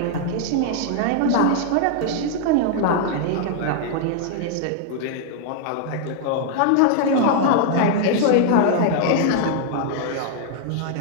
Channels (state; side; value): different; both; correlation -0.01